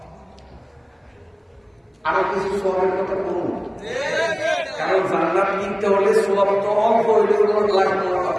আরো কিছু সবের কথা বলুন কারণ জান্নাত কিনতে হলে সব তো অল্প হইলে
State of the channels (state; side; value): identical; both; correlation 1.00